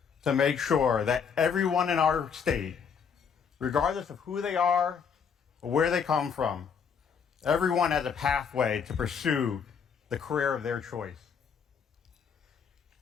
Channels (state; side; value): quieter; right; 6.6 dB